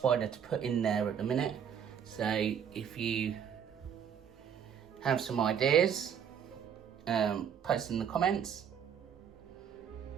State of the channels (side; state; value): left; quieter; 8.1 dB